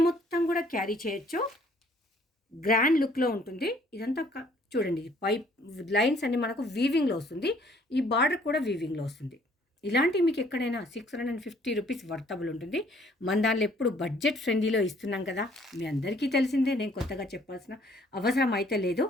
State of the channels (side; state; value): both; normal; correlation 0.61